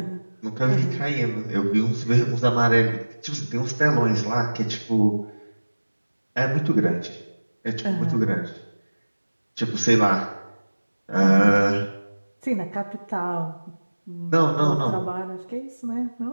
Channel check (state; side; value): inverted; both; correlation -1.00